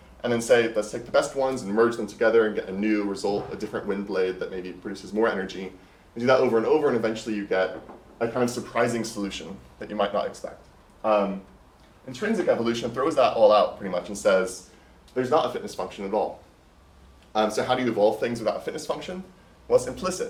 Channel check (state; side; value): identical; both; correlation 1.00